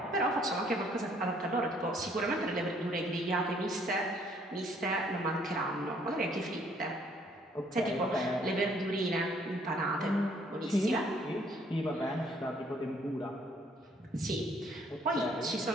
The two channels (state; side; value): normal; both; correlation 0.63